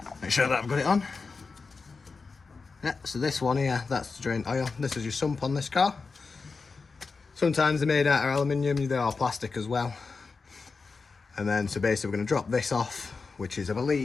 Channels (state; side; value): quieter; right; 4.5 dB